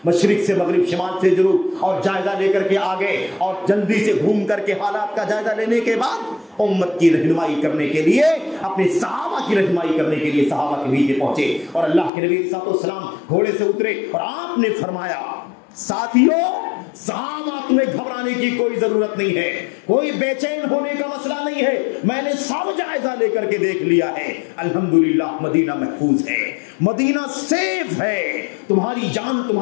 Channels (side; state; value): right; drops out; at 12.1 s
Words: مشرق سے مغرب، شمال سے جنوب، اور جائزہ لے کر کے آگے، اور جلدی سے گھوم کر کے حالات کا جائزہ لینے کے بعد امت کی رہنمائی کرنے کے لیے، اپنے صحابہ کی رہنمائی کرنے کے لیے صحابہ کے بیچ پہنچے، اور اللہ کے نبی صلی اللہ علیہ وسلم گھوڑے سے اترے اور آپ نے فرمایا، ساتھیوں، صحابہ تمہیں گھبرانے کی کوئی ضرورت نہیں ہے، کوئی بے چین ہونے کا مسئلہ نہیں ہے، میں نے سب جائزہ لے کر کے دیکھ لیا ہے، الحمدللہ مدینہ محفوظ ہے، مدینہ سیف ہے، تمہاری جان،